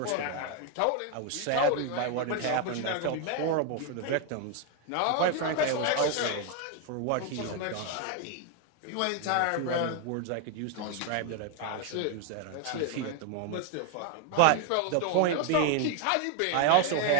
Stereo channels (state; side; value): different; both; correlation 0.01